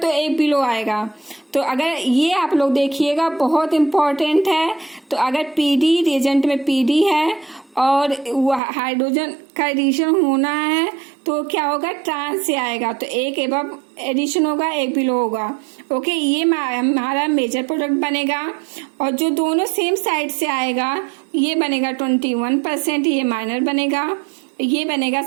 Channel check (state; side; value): drops out; left; at 8.6 s